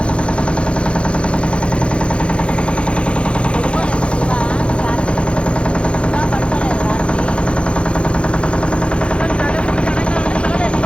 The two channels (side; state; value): right; late; 0.058 ms